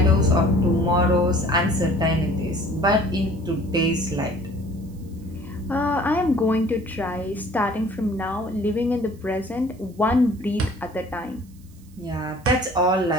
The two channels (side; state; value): right; noise; hiss, 29 dB below the sound